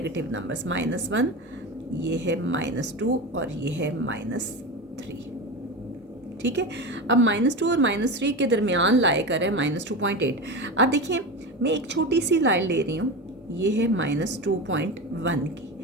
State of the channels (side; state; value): both; normal; correlation 0.24